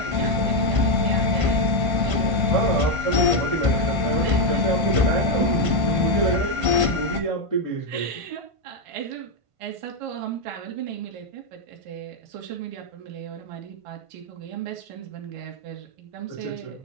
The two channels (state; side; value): late; left; 1.5 ms